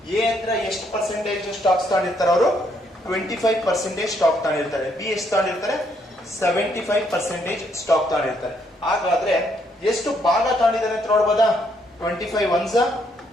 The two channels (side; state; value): both; normal; correlation 0.72